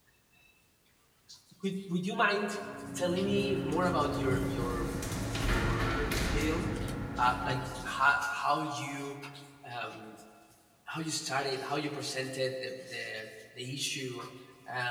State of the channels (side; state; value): both; identical; correlation 1.00